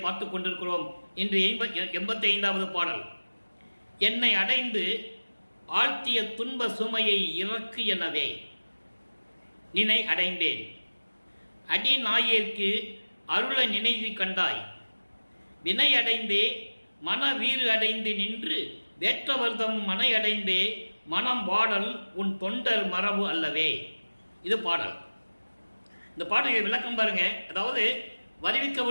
பார்த்து கொண்டிருக்கிறோம். இன்று 85வது பாடல். என்னை அடைந்து ஆழ்த்திய துன்ப சுமையை இறக்கு எனவே நினை அடைந்தேன், அடி நாயேற்கு அருள நினைவு கண்டாய், வினை அடைந்தே மன வீறு அடைந்து நின்று வேற்றவர்தம் மனை அடைந்தே மனம் வாடல் உன் தொண்டர் மரபு அல்லவே. இது பாடல். இந்த பாடலை விளக்கம் பாருங்க. அதாவது வருவிக்க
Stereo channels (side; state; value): both; inverted; correlation -1.00